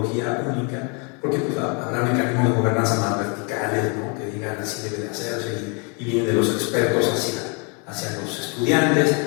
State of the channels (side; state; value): right; quieter; 34.9 dB